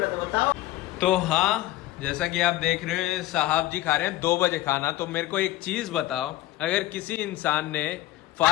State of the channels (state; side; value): quieter; right; 15.6 dB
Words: थे बताओ। तो हाँ, जैसा कि आप देख रहे हैं साहब जी खा रहे हैं 2 बजे खाना। तो मेरे को एक चीज बताओ, अगर किसी इंसान ने